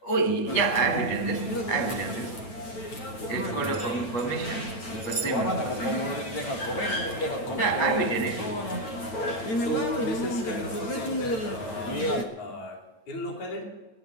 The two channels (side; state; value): right; late; 9.0 ms